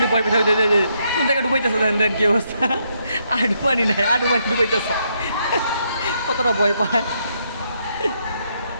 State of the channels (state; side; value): inverted; both; correlation -0.76